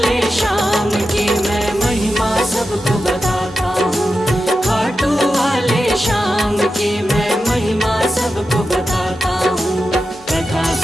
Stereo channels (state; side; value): normal; both; correlation 0.91